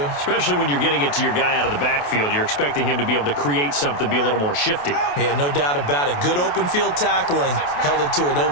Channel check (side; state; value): right; late; 28 ms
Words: Especially when you're getting it to your guy out of the backfield. You're expecting him to be able to create something, be a little more shifty. Yeah, no doubt about it. Good open field tackling held it to an